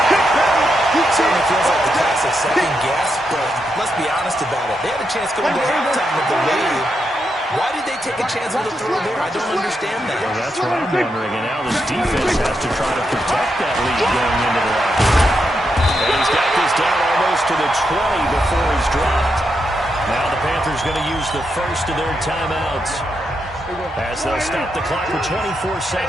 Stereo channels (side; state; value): both; normal; correlation 0.83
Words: Certainly feels like the classic second guess, but let's be honest about it. They had a chance going to halftime with the lead. Why did they take a chance with a throw there? I don't understand that. Well, that's what I'm wondering. And now this defense has to try to protect that lead going into the locker room. And he's got this down almost to the 20 before he's dropped. Now the Panthers going to use the first of their timeouts as they'll stop the clock with 24